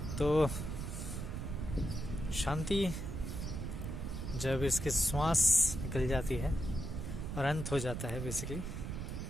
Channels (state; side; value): noise; right; rumble, 4 dB below the sound